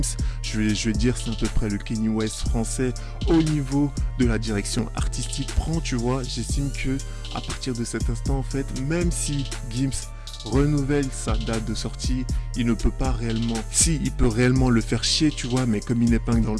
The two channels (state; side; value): identical; both; correlation 1.00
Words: je vais dire c'est à peu près le Kanye West français au niveau de la direction artistique prend, tu vois. J'estime que à partir de cet instant en fait, même si Gims renouvelle sa date de sortie, il ne peut pas réellement, si il peut réellement le faire chier, tu vois, mais comme il n'épingle dans